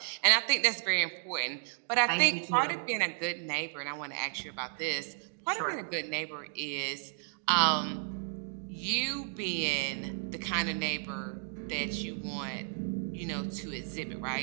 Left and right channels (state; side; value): silent; left; 56 dB below the other